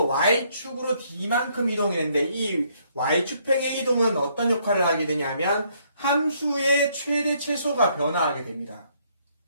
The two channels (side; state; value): both; inverted; correlation -0.69